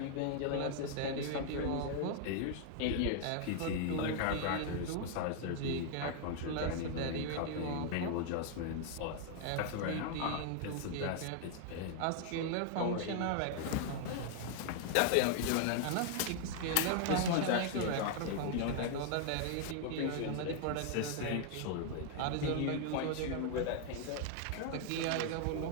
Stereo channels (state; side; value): different; both; correlation 0.00